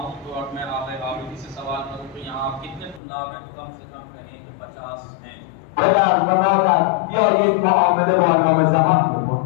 तो और मैं आगे आबिदी से सवाल करूँ कि यहाँ कितने तुल्लाब हैं, तो कम से कम कहें कि 50 हैं। پدر و مادر بیایید معامله با امام زمان بکن.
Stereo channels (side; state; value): right; drops out; at 3.0 s